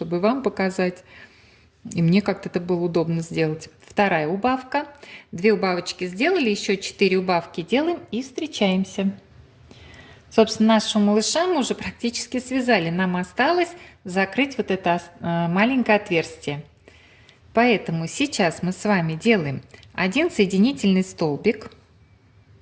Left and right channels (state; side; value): identical; both; correlation 1.00